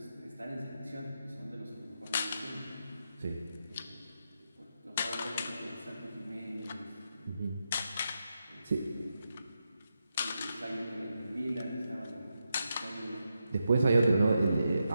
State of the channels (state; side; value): inverted; both; correlation -0.86